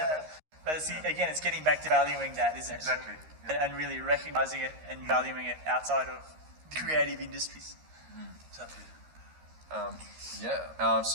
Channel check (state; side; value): late; left; 13 ms